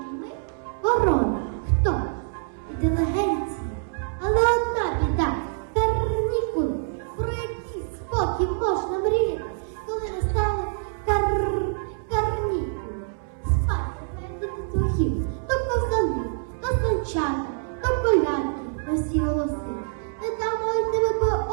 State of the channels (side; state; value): left; silent; 61 dB below the other